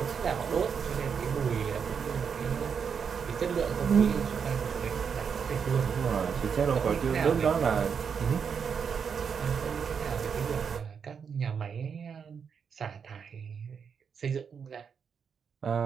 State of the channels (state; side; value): quieter; left; 6.6 dB